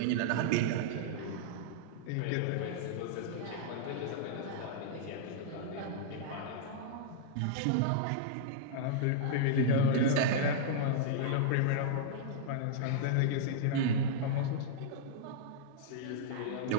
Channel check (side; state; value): both; different; correlation -0.02